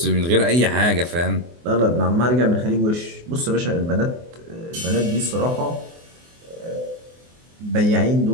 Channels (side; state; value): left; late; 24 ms